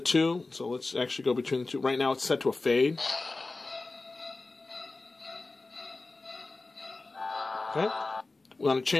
so let's actually go between the two. Right now it's set to a fade. Okay. We want to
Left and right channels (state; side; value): quieter; right; 3.4 dB